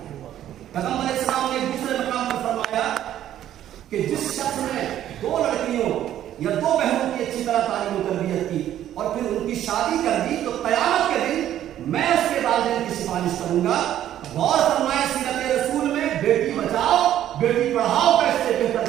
پیغمبر علیہ السلام نے دوسرے مقام پر فرمایا کہ جس شخص نے 2 لڑکیوں یا 2 بہنوں کی اچھی طرح تعلیم و تربیت کی اور پھر ان کی شادی کر دی تو قیامت کے دن میں اس کے والدین کی سفارش کروں گا۔ غور فرمائے سیرت رسول میں بیٹی بچاؤ بیٹی پڑھاؤ کا اس سے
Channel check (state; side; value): quieter; left; 11.7 dB